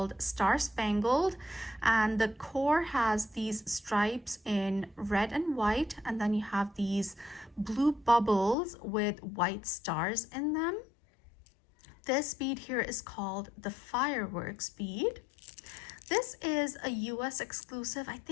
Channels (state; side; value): drops out; right; at 8.6 s